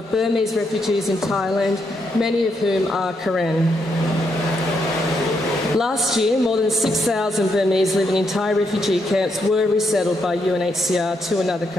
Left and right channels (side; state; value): both; normal; correlation 0.79